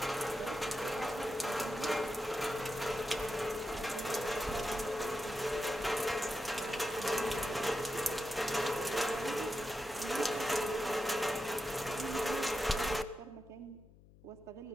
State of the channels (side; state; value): left; noise; hum, 23 dB below the sound